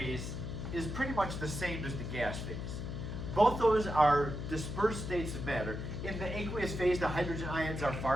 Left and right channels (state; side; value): noise; left; hum, 5 dB below the sound